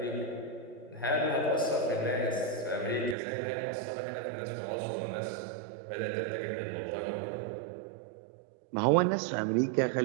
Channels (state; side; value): drops out; left; at 3.2 s